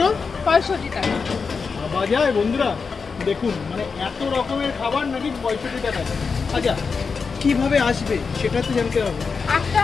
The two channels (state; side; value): quieter; right; 5.1 dB